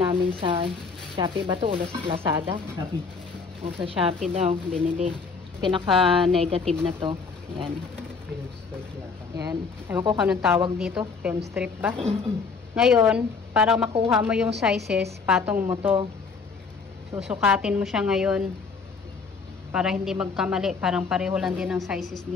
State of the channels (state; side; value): quieter; right; 4.9 dB